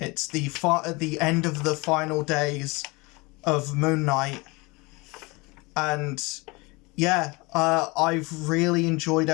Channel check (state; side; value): quieter; right; 25.5 dB